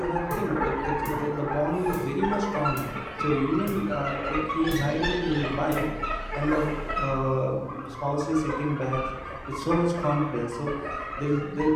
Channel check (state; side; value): identical; both; correlation 1.00